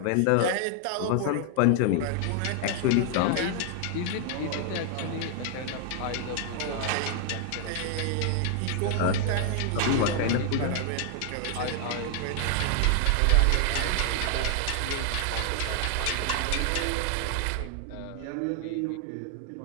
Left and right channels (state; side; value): different; both; correlation 0.00